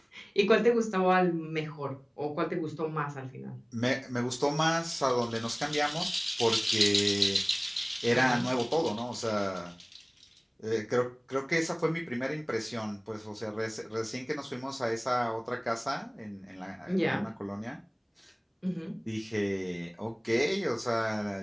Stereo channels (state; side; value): identical; both; correlation 1.00